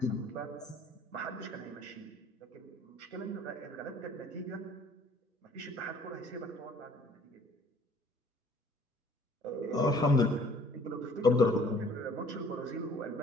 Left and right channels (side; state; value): both; normal; correlation 0.55